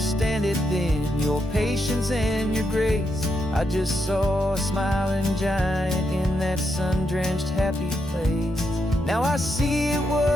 it then, your patience and your grace. I just saw a smiling giant in that sun-drenched happy place. Now I see it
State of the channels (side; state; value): both; normal; correlation 0.82